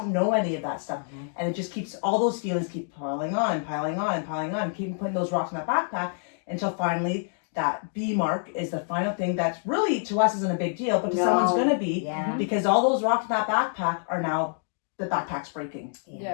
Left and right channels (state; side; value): silent; right; digital silence